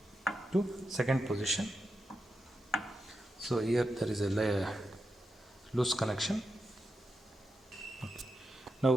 to second position. So here there is a loose connection.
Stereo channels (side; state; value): both; normal; correlation 0.88